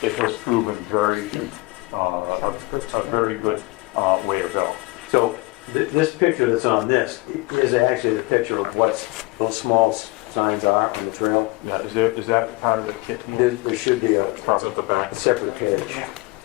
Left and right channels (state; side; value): quieter; right; 23.0 dB